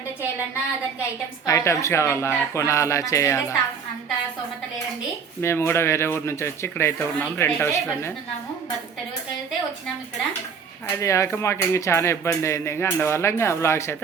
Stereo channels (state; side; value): quieter; left; 6.2 dB